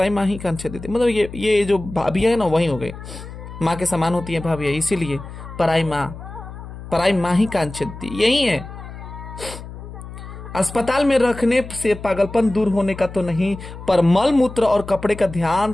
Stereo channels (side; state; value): left; noise; hum, 13 dB below the sound